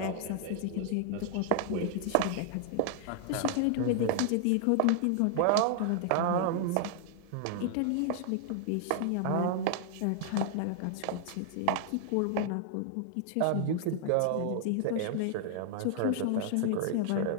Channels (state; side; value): different; both; correlation -0.01